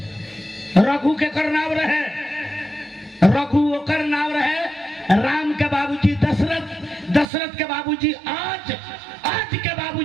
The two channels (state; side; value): drops out; left; at 7.2 s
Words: रघु के कर नाम रहे, रघु ओकर नाम रहे। राम के बाबूजी दशरथ, दशरथ के बाबूजी आज, आज के